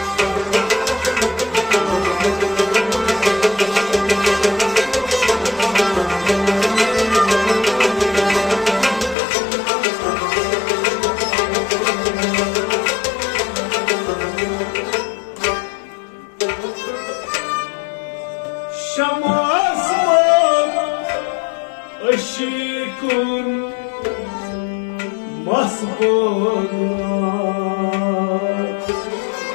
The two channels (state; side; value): drops out; right; at 9.2 s